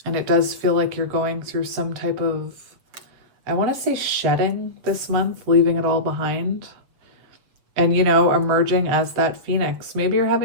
And it does feel like you're going through some type of, I want to say shedding this month, leaving it all behind. And, you know, emerging as that phoenix. Maybe you're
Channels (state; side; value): late; left; 7.7 ms